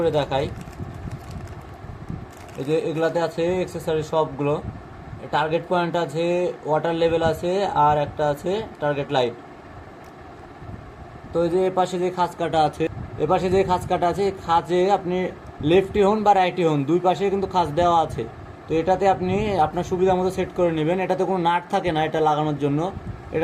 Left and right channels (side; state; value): both; identical; correlation 1.00